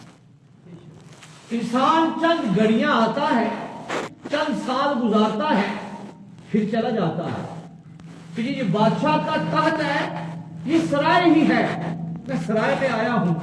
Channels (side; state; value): both; identical; correlation 1.00